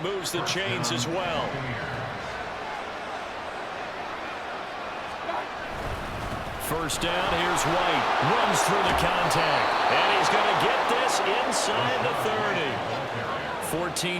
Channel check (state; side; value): identical; both; correlation 1.00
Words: moves the chains as well. First down, here's White. Runs through the contact. And he's going to get this inside the 30.